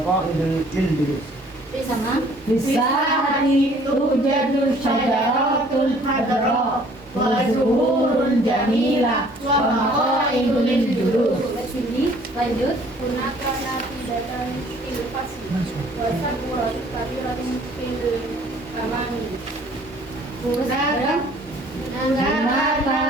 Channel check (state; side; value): normal; both; correlation 0.56